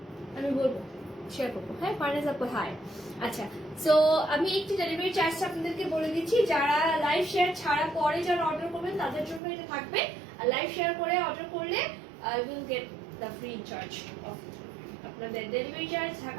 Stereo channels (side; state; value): left; drops out; at 9.4 s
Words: আমি বলবো শেয়ার করবো। হ্যাঁ ফার্নেস আপু হাই। আচ্ছা, সো আমি একটু ডেলিভারি চার্জটা আপনাদেরকে বলে দিচ্ছি। যারা লাইভ শেয়ার ছাড়া পরে যারা অর্ডার করবেন তাদের জন্য এটা থাকবে, আর লাইভ শেয়ার করে অর্ডার করলে will get the free charge of আপনাদের ডেলিভারি চার্জ